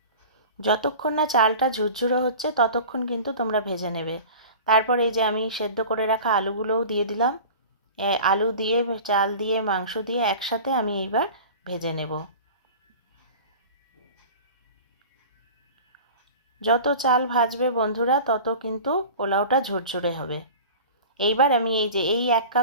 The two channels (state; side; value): inverted; both; correlation -0.37